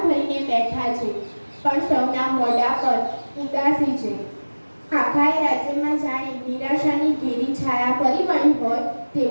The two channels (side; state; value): both; inverted; correlation -1.00